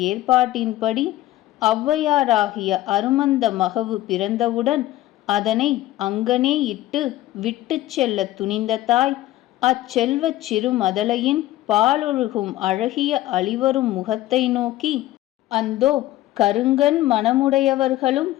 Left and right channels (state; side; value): quieter; right; 15.5 dB